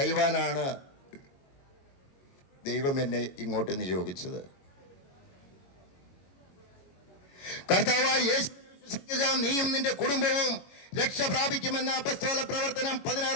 ദൈവം എന്നെ ഇങ്ങോട്ട് നിയോഗിച്ചത്. കർത്താവായ യേശു വിശ്വസിക്കുക, നീയും നിന്റെ കുടുംബവും രക്ഷ പ്രാപിക്കുമെന്ന അപ്പസ്തോല പ്രവർത്തനം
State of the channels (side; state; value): right; late; 22 ms